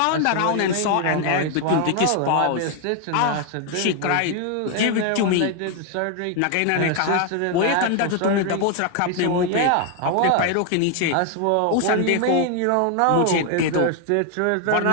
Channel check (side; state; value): both; different; correlation 0.01